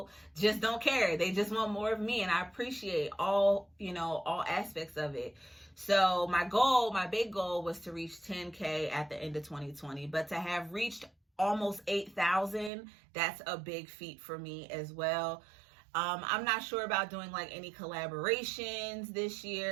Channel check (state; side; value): drops out; left; at 12.7 s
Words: just don't care. They just want more of me, and I appreciate all, you know, all aspects of it. So my big goal was to reach 10K at the end of 2020, but to have reached almost 8,000, that's a big feat for me as well. I'm not sure about doing like any collaborations this